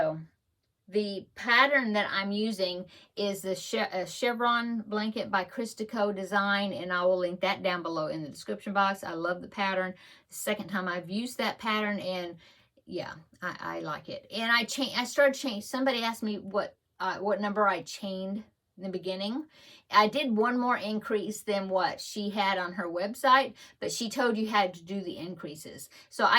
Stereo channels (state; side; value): identical; both; correlation 1.00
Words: the pattern that I'm using is the chevron blanket by Christico Design, and I will link that down below in the description box. I love the pattern. The second time I've used that pattern, and yeah, I like it. And I started changing. Somebody asked me what number I chained in the beginning. I did one more increase than what she had on her website, but she told you had to do the increases. So